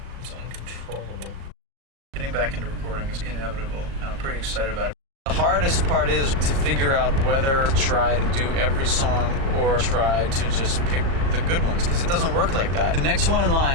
It's uncontrollable. Getting back into recording is inevitable, and I'm pretty excited about it. The hardest part is to figure out whether to try to do every song or try to just pick the good ones, because it doesn't work like that. The next one in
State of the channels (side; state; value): left; late; 37 ms